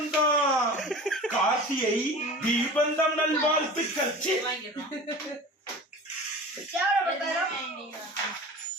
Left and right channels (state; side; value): normal; both; correlation 0.37